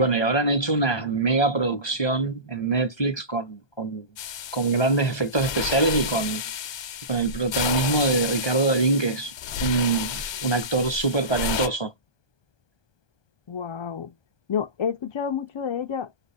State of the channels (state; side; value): late; right; 1.2 ms